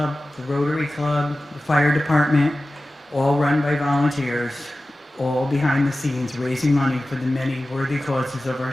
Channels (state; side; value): normal; both; correlation 0.95